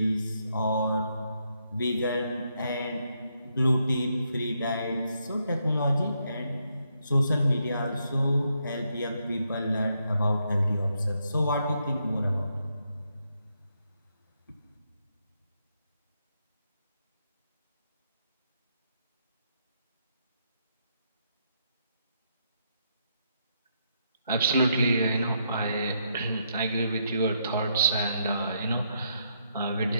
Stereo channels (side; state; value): both; inverted; correlation -0.77